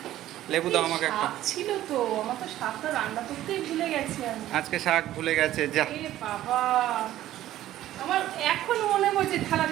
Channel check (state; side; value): quieter; left; 13.7 dB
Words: লেবু দাও আমাকে একটা। শাক ছিল তো, আমার তো শাকটা রান্না করতেই ভুলে গেছি আমি। আজকে শাক ভুলে গেছে যা। এ বাবা, আমার এখন মনে পড়ছে থালা